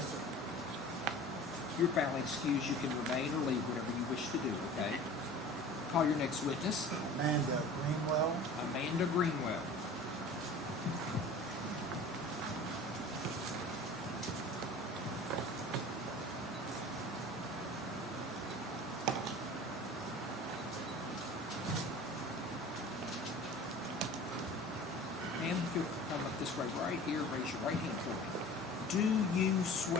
sir. You're foully excused. You can remain or leave, whatever you wish to do, okay? Call your next witness. Amanda Greenwell. Amanda Greenwell. you'll come up this way right here, raise your right hand for me. Do you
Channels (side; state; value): both; normal; correlation 0.41